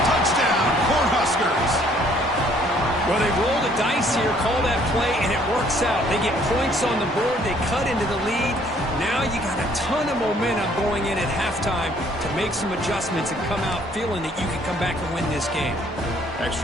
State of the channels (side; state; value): both; normal; correlation 0.61